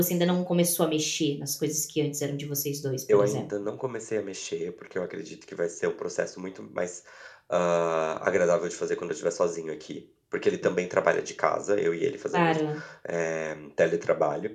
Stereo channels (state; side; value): identical; both; correlation 1.00